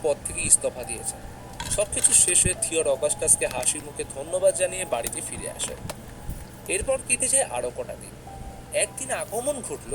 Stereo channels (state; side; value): identical; both; correlation 1.00